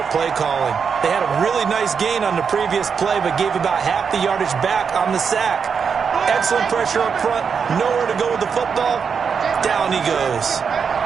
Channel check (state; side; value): quieter; left; 6.3 dB